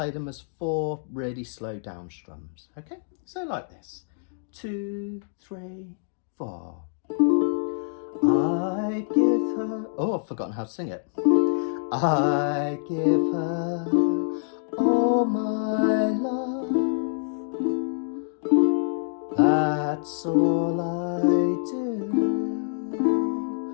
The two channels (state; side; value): silent; right; digital silence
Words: them as 4 really slow down strums, okay? So like this, 2, 3, 4. I give her, oh, I've forgotten how to sing it. I give her all my love. That's all I do.